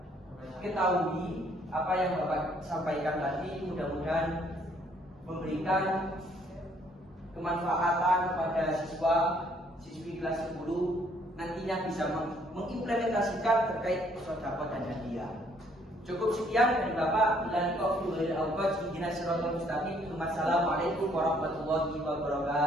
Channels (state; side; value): normal; both; correlation 0.65